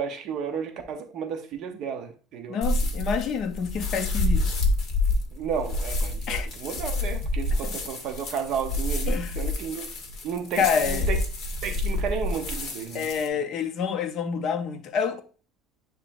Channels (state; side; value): normal; both; correlation 0.51